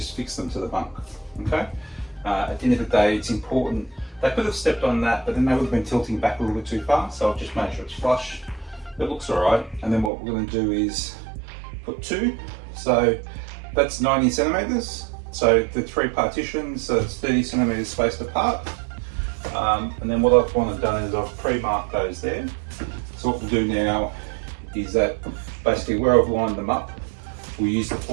fixed them to the bunk, okay? At the end of the day, it's important. They could have stepped on that, but then they would have been tilting back a little bit too far, so I've just made sure it's flush. It looks alright, and then what we're going to do is put two. So that's 90 centimeters. So the three partitions, so it's 30 centimeters spaced apart. And then what I've wanted done is I've pre-marked those there. So what we'll do now is that basically where I've lined them up, we'll use the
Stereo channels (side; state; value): left; drops out; at 10.1 s